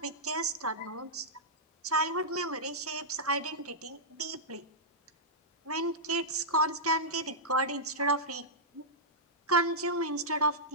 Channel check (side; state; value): both; normal; correlation -0.10